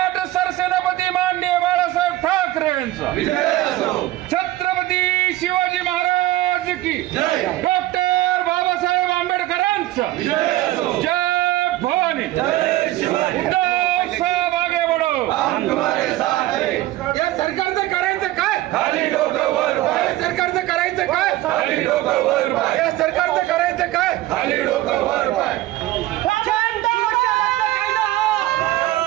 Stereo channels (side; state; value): left; quieter; 16.4 dB